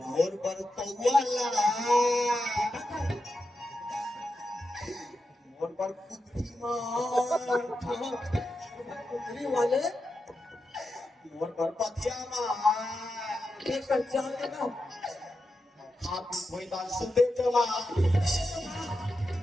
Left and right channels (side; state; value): both; normal; correlation 0.88